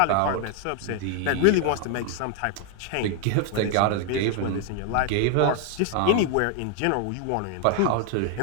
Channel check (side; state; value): both; different; correlation 0.00